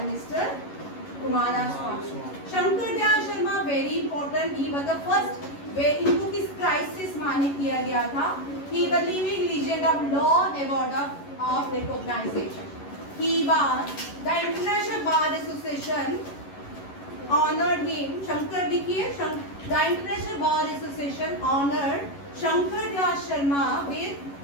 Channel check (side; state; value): right; late; 11 ms